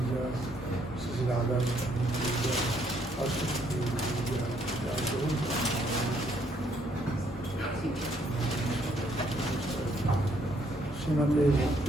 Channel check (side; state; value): both; normal; correlation 0.69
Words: जय श्री राधा जय श्रीमते